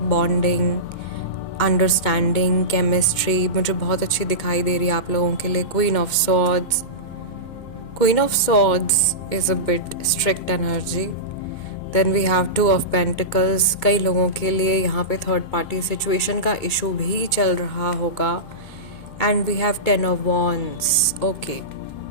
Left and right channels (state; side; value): late; right; 2.6 ms